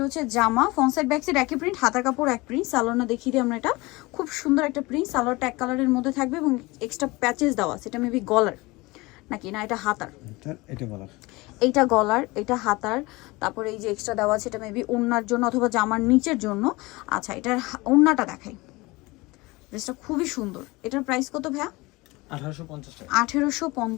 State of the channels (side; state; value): right; quieter; 22.7 dB